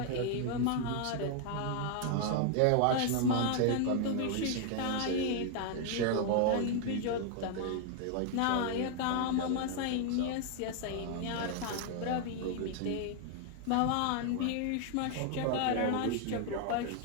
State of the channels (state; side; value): different; both; correlation 0.00